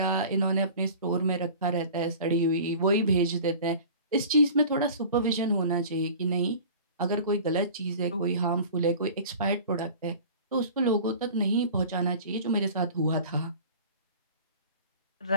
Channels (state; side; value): inverted; both; correlation -0.41